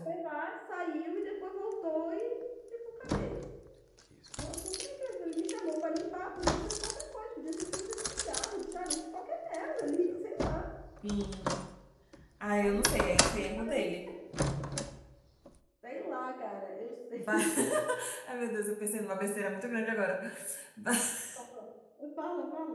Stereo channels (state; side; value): identical; both; correlation 1.00